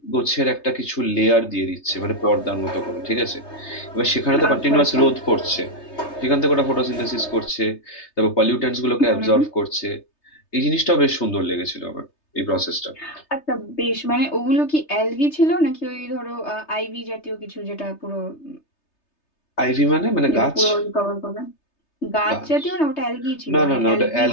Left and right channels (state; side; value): late; right; 3.3 ms